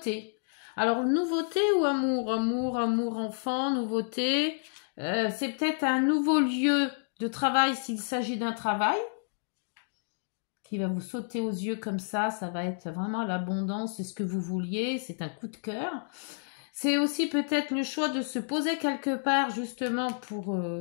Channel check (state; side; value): silent; right; digital silence